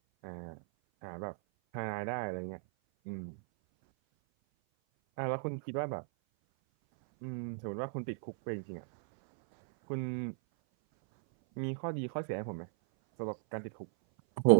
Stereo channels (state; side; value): silent; left; 54 dB below the other